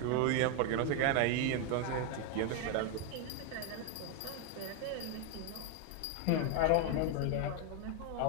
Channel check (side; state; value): both; different; correlation 0.01